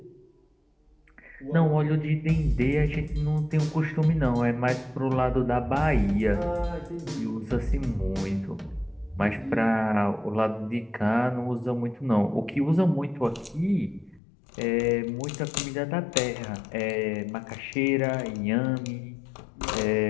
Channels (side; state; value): right; drops out; at 14.2 s